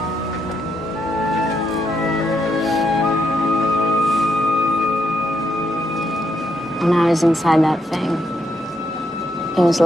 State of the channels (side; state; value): both; normal; correlation 0.78